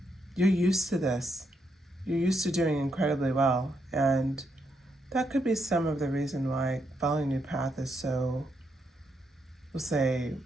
you're used to this. You're used to doing incredibly well. And that could be some of the reason why following a new path is so, we'll say,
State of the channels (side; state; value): both; normal; correlation 0.79